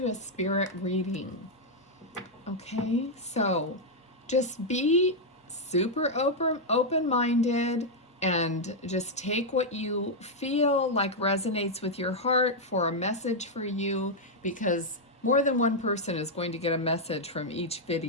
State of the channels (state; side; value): normal; both; correlation -0.02